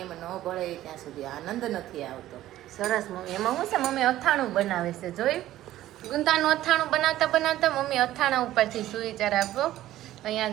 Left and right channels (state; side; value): quieter; left; 14.2 dB